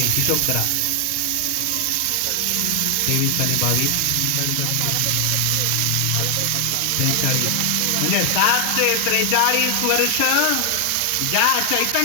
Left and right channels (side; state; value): both; different; correlation 0.00